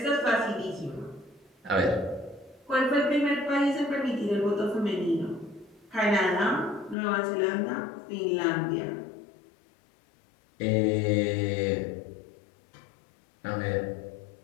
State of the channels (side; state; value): right; drops out; at 7.0 s